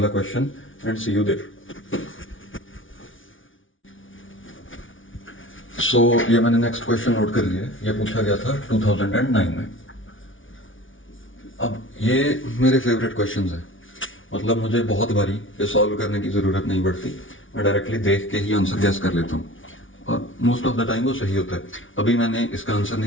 question and see you there. So ये मैंने नेक्स्ट क्वेश्चन नोट कर लिया है, ये पूछा गया था 2009 में। अब ये मेरे फेवरेट क्वेश्चंस हैं, मतलब मुझे बहुत बारी ये सॉल्व करने की जरूरत नहीं पड़ती, मैं डायरेक्टली देख के ही आंसर गैस कर लेता हूँ और मोस्ट ऑफ द टाइम वो सही होता है। अभी मैंने इसका आंसर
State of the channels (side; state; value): right; late; 0.57 ms